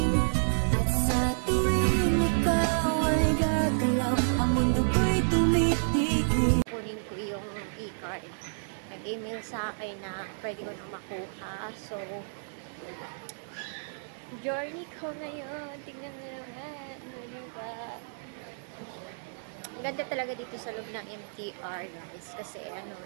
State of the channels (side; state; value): left; silent; digital silence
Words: At sa tuwing ikaw ay gagalaw, ang mundo ko'y tumitigil. kunin ko yung e-card. Nag-email sa akin na pwede ko makuha. So, journey ko ngayon. Tingnan mo naman. Ganda talaga dito sa loob ng MTR, guys. Kasi